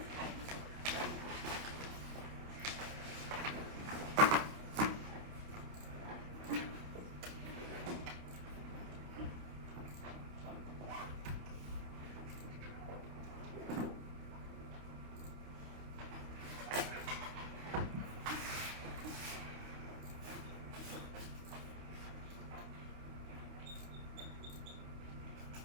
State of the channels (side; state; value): left; late; 28 ms